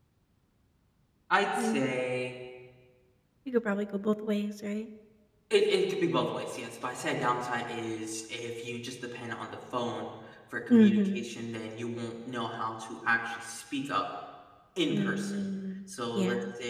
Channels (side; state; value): both; identical; correlation 1.00